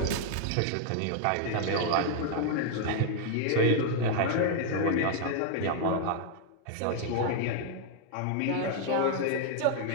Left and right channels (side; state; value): both; different; correlation 0.00